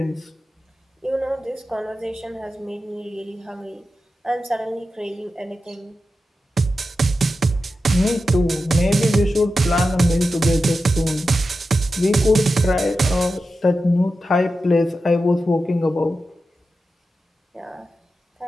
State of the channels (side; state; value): both; normal; correlation 0.91